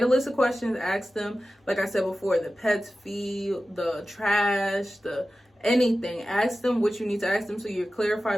a list of questions, ask them, like I said before, the pets fee, the trash, anything. Ask them what you need to ask them so you're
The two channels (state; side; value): normal; both; correlation 0.94